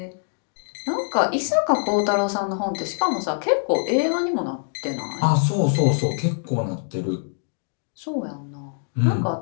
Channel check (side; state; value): right; silent; digital silence